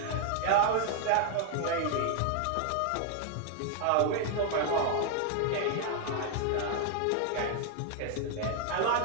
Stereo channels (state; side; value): different; both; correlation 0.00